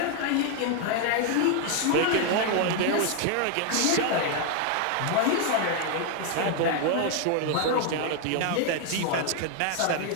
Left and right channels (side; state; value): both; different; correlation 0.00